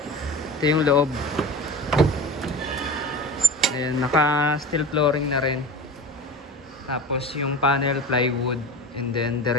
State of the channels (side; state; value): both; normal; correlation 0.32